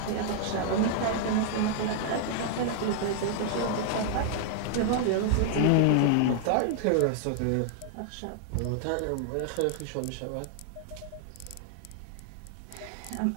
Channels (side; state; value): both; different; correlation -0.01